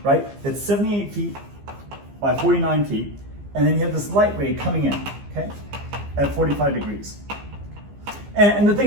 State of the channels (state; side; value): late; left; 15 ms